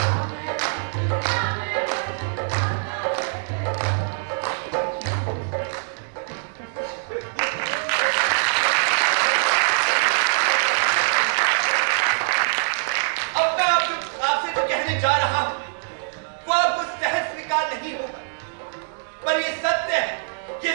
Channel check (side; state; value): left; silent; digital silence